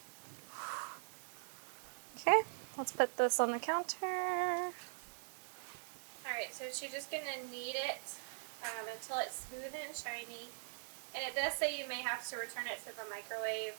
Okay, let's put this on the counter. All right, so she's just going to knead it until it's smooth and shiny. And it does say you may have to return it to the microwave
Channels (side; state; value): left; silent; digital silence